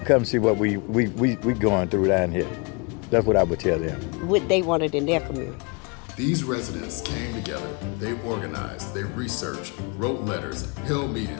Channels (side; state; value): right; quieter; 30.9 dB